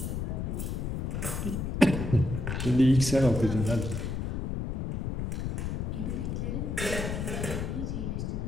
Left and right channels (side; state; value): left; noise; rumble, 2 dB below the sound